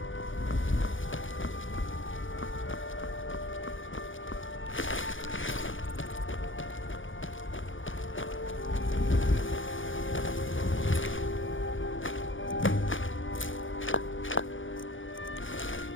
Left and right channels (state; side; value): late; right; 0.57 ms